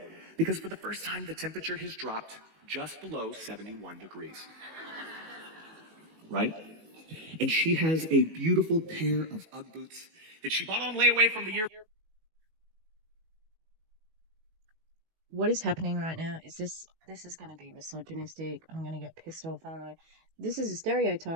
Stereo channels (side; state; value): left; late; 18 ms